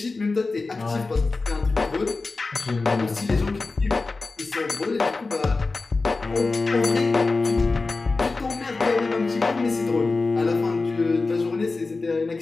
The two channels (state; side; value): quieter; right; 3.7 dB